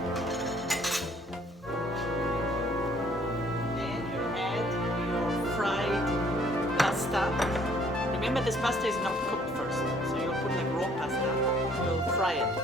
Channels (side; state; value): both; normal; correlation 0.60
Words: Then you add your fried pasta. Remember, this pasta is not cooked first, so you'll put like raw pasta. You'll fry it